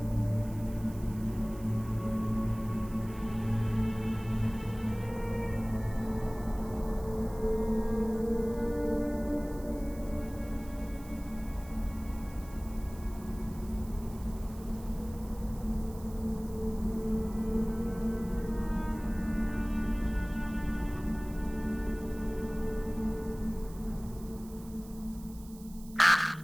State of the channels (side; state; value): right; noise; hiss, 21 dB below the sound